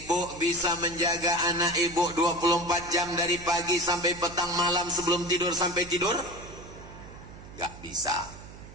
bisa menjaga anak ibu 24 jam dari pagi sampai petang malam sebelum tidur sampai tidur? Gak bisa.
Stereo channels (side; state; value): right; noise; hum, 16 dB below the sound